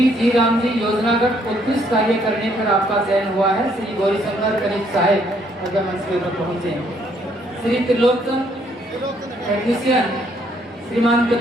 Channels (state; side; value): normal; both; correlation 0.68